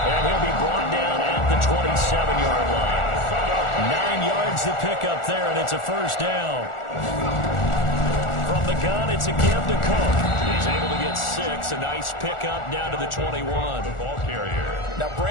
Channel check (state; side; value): late; right; 1.4 ms